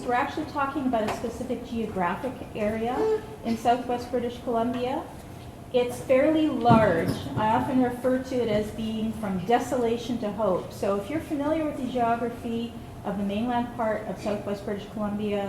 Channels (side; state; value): both; identical; correlation 1.00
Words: we're actually talking about a specific geographic area in southwest British Columbia. It's fairly large. I often refer to it as being from desolation to hope. So if you're familiar with the geography of the mainland part of southwest British